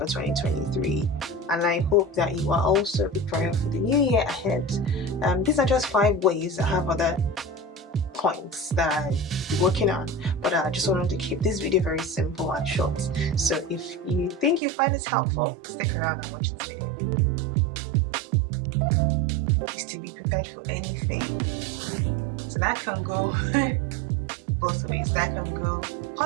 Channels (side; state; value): left; drops out; at 14.6 s